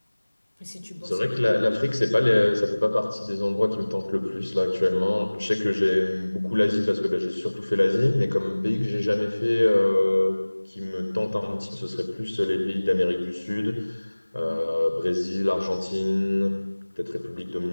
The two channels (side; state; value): both; inverted; correlation -1.00